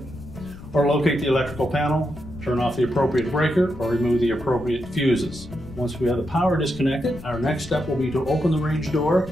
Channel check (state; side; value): noise; left; rumble, 15 dB below the sound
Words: or locate the electrical panel, turn off the appropriate breaker, or remove the appropriate fuses. Once we have the power disconnected, our next step will be to open the range door